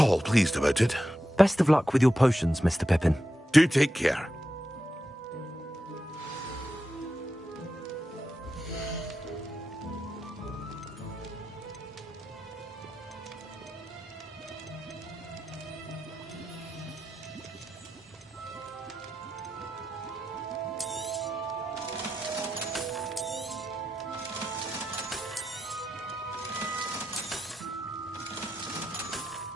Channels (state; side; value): normal; both; correlation 0.89